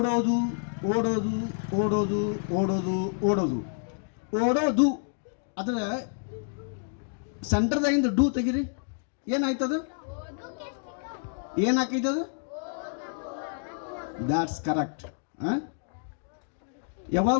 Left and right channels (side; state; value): right; silent; digital silence